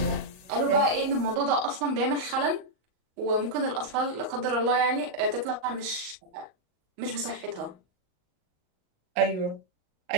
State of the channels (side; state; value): left; late; 38 ms